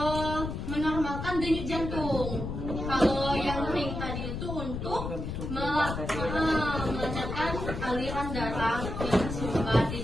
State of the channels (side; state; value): left; noise; rumble, 5 dB below the sound